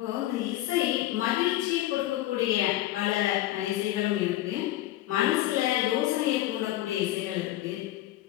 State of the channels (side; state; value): right; quieter; 15.3 dB